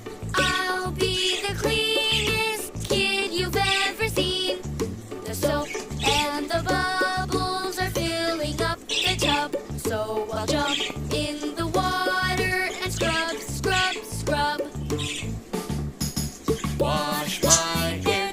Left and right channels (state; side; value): identical; both; correlation 1.00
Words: I'll be the cleanest kid you've ever seen. The soap and the bubbles are filling up the tub, so I'll jump in the water and scrub, scrub, scrub. Wash my hair,